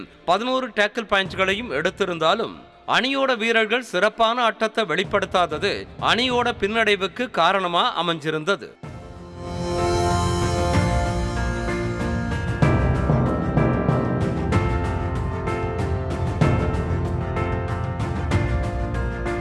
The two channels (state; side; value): identical; both; correlation 1.00